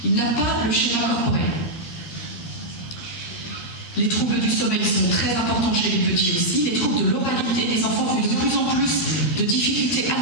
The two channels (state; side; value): late; right; 13 ms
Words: Il n'a pas le schéma corporel. Les troubles du sommeil sont très importants chez les petits aussi. Les troubles de l'oralité, les enfants ont de plus en plus de difficultés